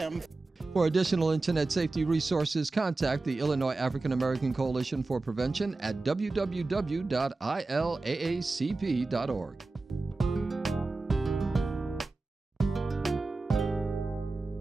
For additional internet safety resources, contact the Illinois African American Coalition for Prevention at www.ilaacp.org.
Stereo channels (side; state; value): left; quieter; 3.4 dB